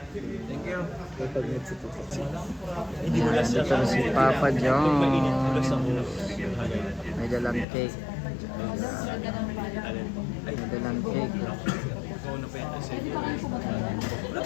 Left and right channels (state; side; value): drops out; right; at 7.7 s